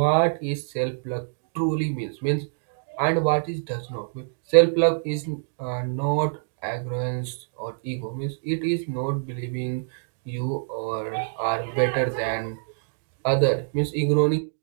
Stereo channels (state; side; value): silent; left; digital silence